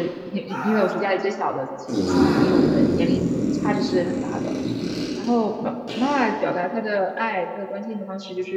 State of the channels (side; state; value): both; identical; correlation 1.00